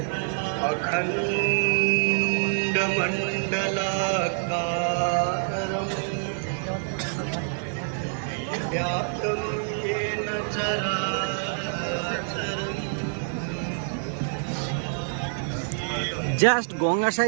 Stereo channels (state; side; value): silent; left; 58 dB below the other